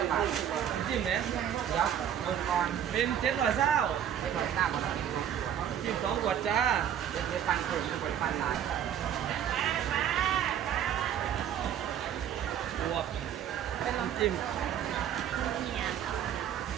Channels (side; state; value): left; quieter; 9.7 dB